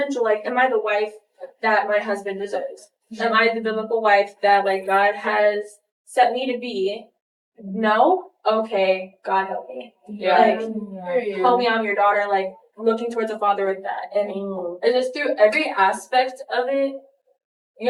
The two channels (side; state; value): both; identical; correlation 1.00